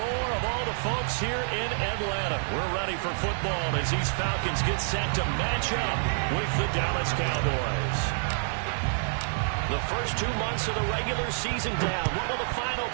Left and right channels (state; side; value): silent; left; digital silence